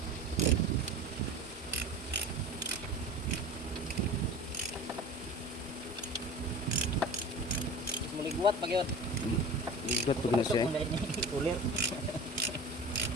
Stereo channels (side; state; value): both; normal; correlation 0.35